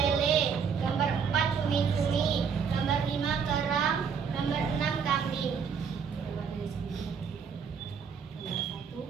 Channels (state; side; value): quieter; left; 6.4 dB